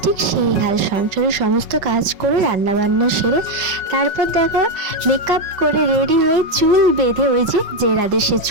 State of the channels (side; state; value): left; late; 5.3 ms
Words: ঠিক সেই হাল। সংসারের সমস্ত কাজ করে রান্না বান্না সেরে তারপর দেখো মেকআপ করে রেডি হয়ে চুল বেঁধে ওই যে রাধে সে